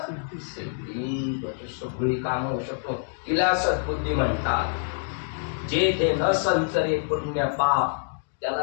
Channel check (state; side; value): silent; right; digital silence